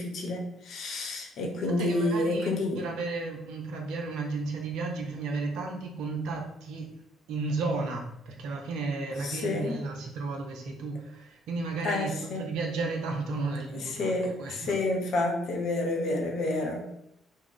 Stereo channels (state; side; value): normal; both; correlation 0.62